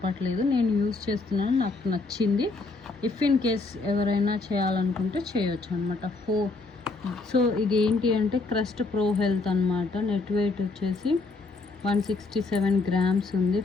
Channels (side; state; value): right; quieter; 3.7 dB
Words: నేను యూజ్ చేస్తున్నాను, నాకు నచ్చింది. ఇఫ్ ఇన్ కేస్ ఎవరైనా చేయాలనుకుంటే చేయొచ్చు అనమాట. సో ఇది ఏంటి అంటే క్రెస్ట్ ప్రో హెల్త్ అనమాట. నెట్ వెయిట్ వచ్చేసి 167 grams ఉంది.